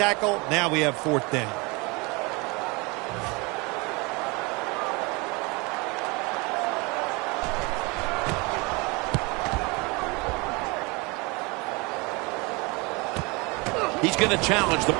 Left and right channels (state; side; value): quieter; left; 27.3 dB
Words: Now we have 4th down. He's going to challenge the